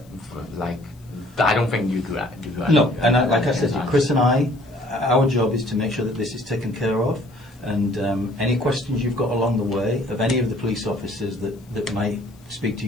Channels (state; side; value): noise; left; hiss, 30 dB below the sound